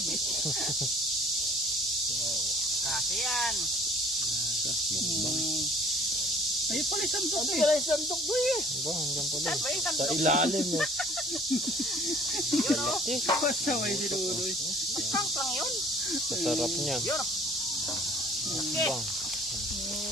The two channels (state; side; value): normal; both; correlation 0.53